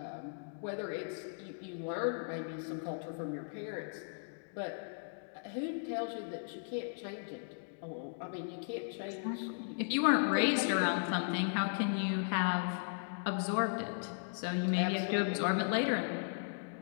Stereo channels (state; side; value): silent; right; digital silence